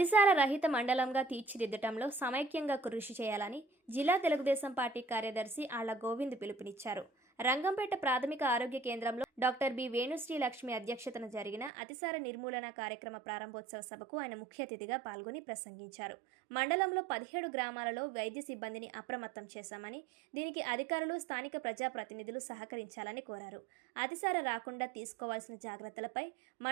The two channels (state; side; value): drops out; left; at 11.7 s